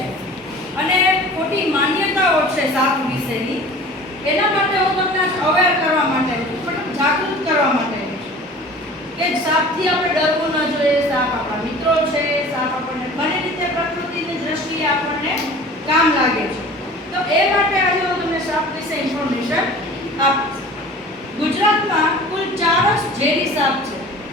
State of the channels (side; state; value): both; normal; correlation 0.43